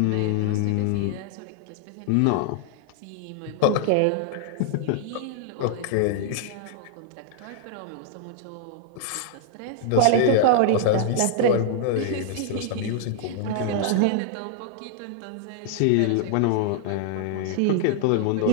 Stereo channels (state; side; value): different; both; correlation -0.01